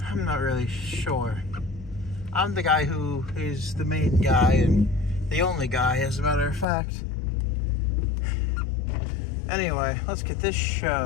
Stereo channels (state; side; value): drops out; right; at 6.7 s